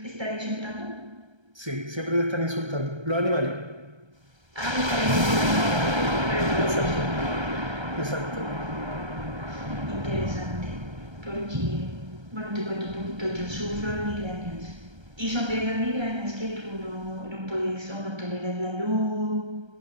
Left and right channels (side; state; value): left; late; 1.3 ms